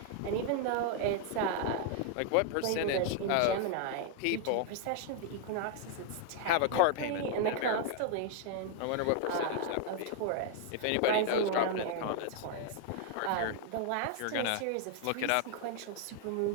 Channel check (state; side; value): different; both; correlation 0.00